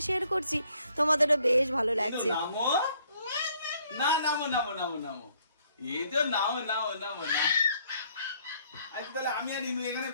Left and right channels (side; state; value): both; inverted; correlation -0.66